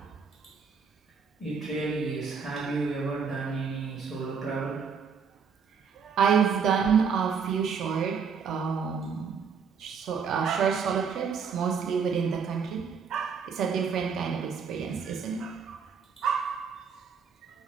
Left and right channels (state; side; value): quieter; left; 6.1 dB